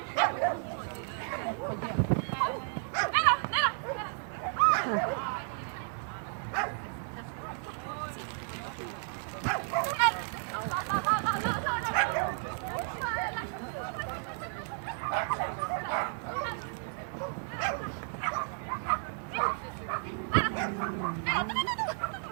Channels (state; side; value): silent; left; 56 dB below the other